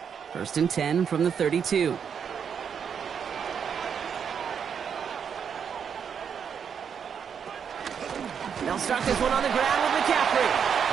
1st and 10 from the 32. They'll start this one on the ground with McCaffrey.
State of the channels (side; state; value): left; quieter; 7.2 dB